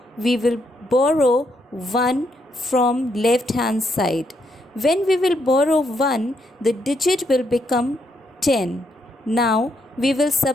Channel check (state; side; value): normal; both; correlation 0.76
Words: we will borrow 1 from left hand side. When we will borrow 1, the digit will become 10. Now we will